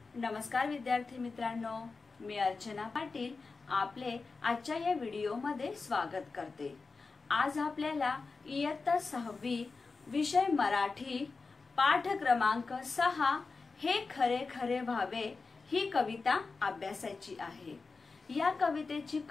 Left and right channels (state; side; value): quieter; right; 4.2 dB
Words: नमस्कार विद्यार्थी मित्रांनो, मी अर्चना पाटील आपले आजच्या या व्हिडिओमध्ये स्वागत करते। आज आपल्याला इयत्ता 6वी विषय मराठी पाठ क्रमांक 6 हे खरे खरे व्हावे ही कविता अभ्यासाची आहे। या कवितेची